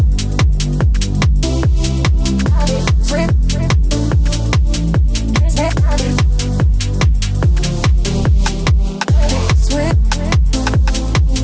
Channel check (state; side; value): identical; both; correlation 1.00